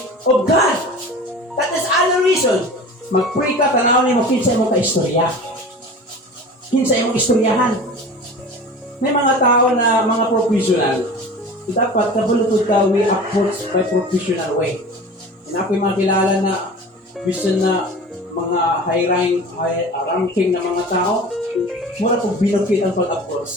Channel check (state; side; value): normal; both; correlation 0.37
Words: of God. That is adoration. Mag-pray ka, tanawin mo, kinsa mo ka-istorya. Kinsa mo istoryahan. May mga tao na mga professional. Dapat kabulutod ka, we approach by professional way. And ako yung mga kilala na vision na mga high ranking na mga tao, mura kong binukit ang